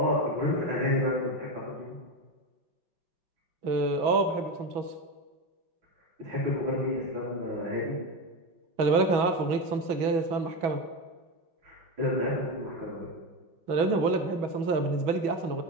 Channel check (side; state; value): left; late; 6.1 ms